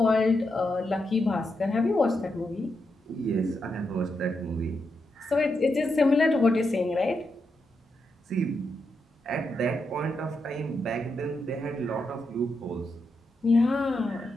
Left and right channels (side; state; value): both; normal; correlation 0.84